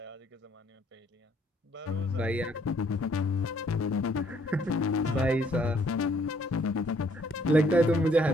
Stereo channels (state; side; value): normal; both; correlation 0.65